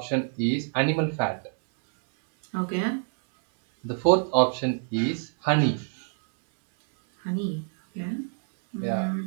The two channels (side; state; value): left; silent; 59 dB below the other